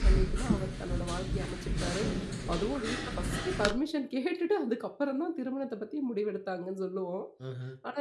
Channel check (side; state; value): both; identical; correlation 1.00